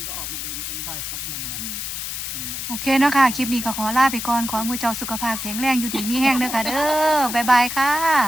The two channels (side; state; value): left; noise; hiss, 5 dB below the sound